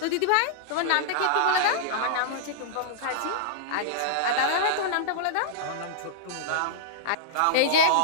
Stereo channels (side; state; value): both; different; correlation -0.02